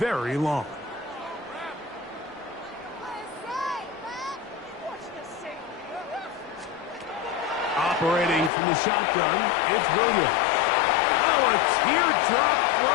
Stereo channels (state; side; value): drops out; right; at 8.5 s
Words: long. Operating from the shotgun, it's Williams. Oh, a teardrop